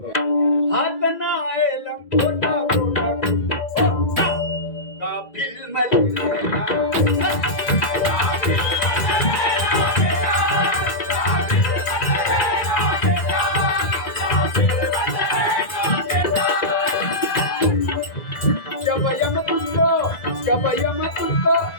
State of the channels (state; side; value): late; right; 1.9 ms